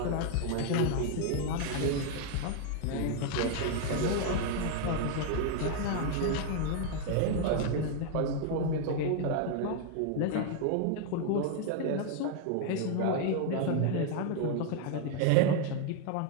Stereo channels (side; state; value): both; different; correlation 0.00